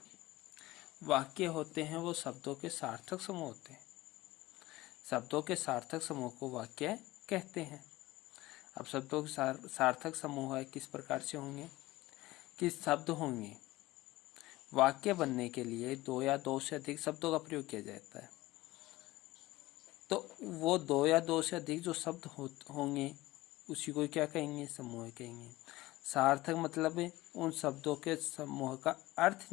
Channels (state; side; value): quieter; right; 18.5 dB